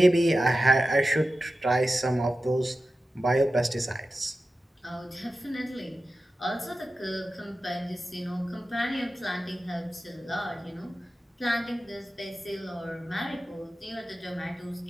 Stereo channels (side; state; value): both; normal; correlation 0.93